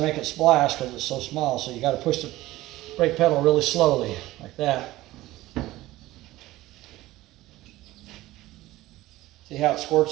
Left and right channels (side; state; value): left; quieter; 17.1 dB